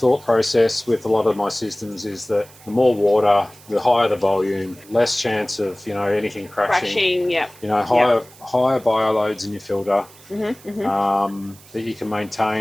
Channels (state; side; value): noise; right; hiss, 23 dB below the sound